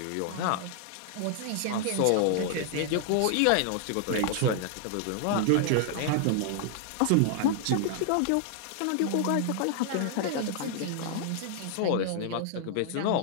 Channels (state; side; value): different; both; correlation 0.00